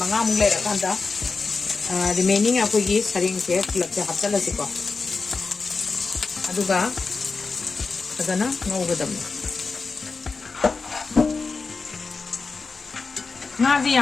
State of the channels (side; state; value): right; quieter; 4.4 dB